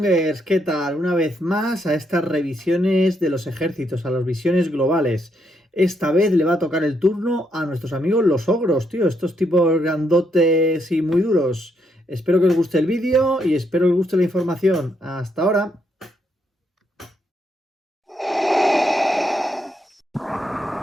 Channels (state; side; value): normal; both; correlation 0.77